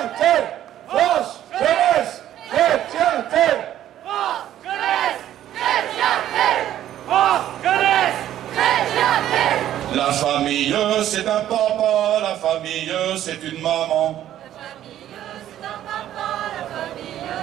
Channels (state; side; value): quieter; left; 12.0 dB